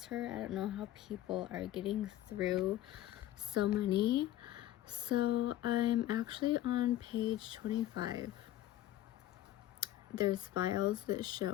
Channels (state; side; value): quieter; right; 13.8 dB